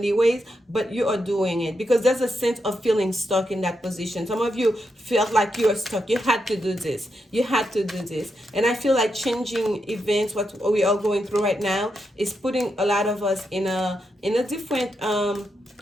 but you are doing it because there's a sense of feeling stuck in that position. Some of you felt like you were stuck. You had to do this. You had to do this. And I feel like changing events, what we are going through right now, is putting a lot of us in a different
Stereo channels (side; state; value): both; normal; correlation 0.84